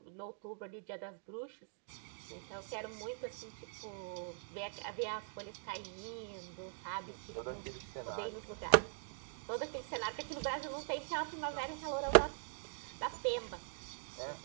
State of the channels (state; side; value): silent; left; digital silence